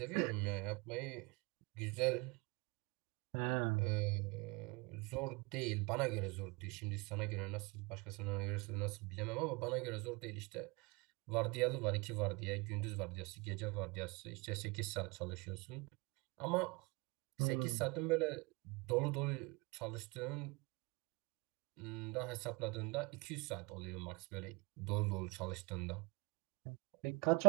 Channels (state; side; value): quieter; left; 27.0 dB